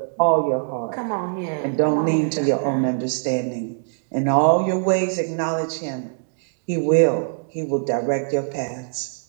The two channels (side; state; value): left; silent; digital silence